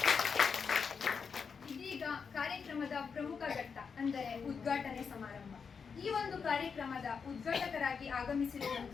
ಇದೀಗ ಕಾರ್ಯಕ್ರಮದ ಪ್ರಮುಖ ಘಟ್ಟ ಅಂದರೆ ಉದ್ಘಾಟನೆ ಸಮಾರಂಭ. ಈ ಒಂದು ಕಾರ್ಯಕ್ರಮದ ಉದ್ಘಾಟಕರಾಗಿ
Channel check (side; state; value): right; quieter; 5.9 dB